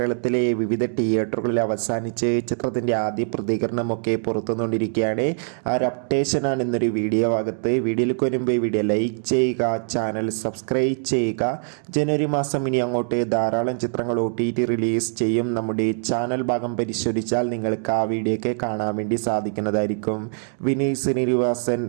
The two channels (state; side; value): silent; left; digital silence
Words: വിവിധ തിയേറ്ററുകളിൽ അവസാനിച്ച് ചിത്രത്തിൻ്റെ ആദ്യ പ്രതികരണമൊക്കെ പുറത്തുകൊണ്ടിരിക്കുകയാണ്. ആ ഒരു അപ്ഡേഷനാണ് ഇന്നൊരു വീഡിയോ ഭാഗത്ത്. വീഡിയോയിലേക്ക് വരുമ്പോൾ ഈ വീഡിയോ ലൈക്ക് ചെയ്യുക, ചാനൽ സബ്സ്ക്രൈബ് ചെയ്യുക. ജനുവരി മാസം ഇനി അങ്ങോട്ട് ധാരാളം ചിത്രങ്ങൾ OTT റിലീസ് ചെയ്യും. നമ്മുടെ ചാനൽ ഭാഗം പരിശോധിച്ചാൽ നിങ്ങൾക്ക് ആ വീഡിയോയൊക്കെ കാണാൻ വേണ്ടി സാധിക്കുന്നതായിരിക്കും. വിനീത് ശ്രീനിവാസൻ,